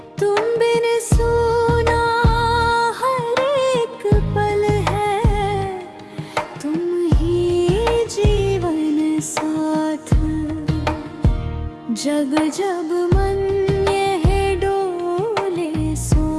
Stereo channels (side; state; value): both; identical; correlation 1.00